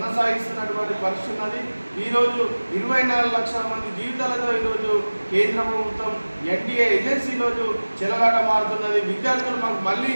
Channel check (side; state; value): both; inverted; correlation -1.00